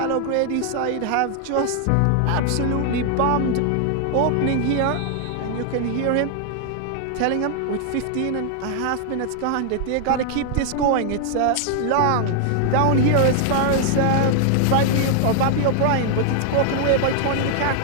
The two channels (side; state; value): both; different; correlation 0.00